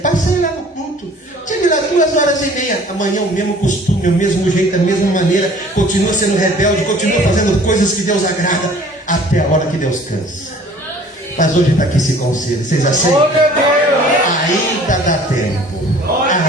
lá no culto. Cheguei lá 2h30. Amanhã o mesmo costume, o mesmo jeito, a mesma maneira. Continua sendo rebelde, continua fazendo coisas que Deus agrada. Até a hora que Deus cansa. Mas hoje está aqui esse conselho. Vocês aceitam? Ainda dá tempo.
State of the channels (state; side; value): normal; both; correlation 0.51